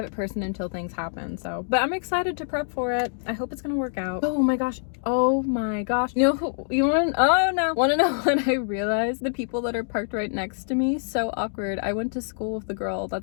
person until things happen. So, but I'm excited to prep for it. I hope it's gonna work out. Oh my gosh. Oh my gosh. You know who, you want to, oh no. Want to know when I realized the people that are parked right next to me? So awkward. I went to school with the girl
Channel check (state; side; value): silent; right; digital silence